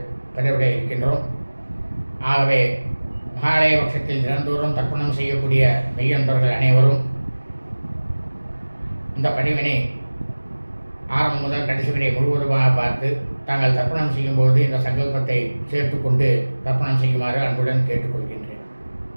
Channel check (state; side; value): inverted; both; correlation -1.00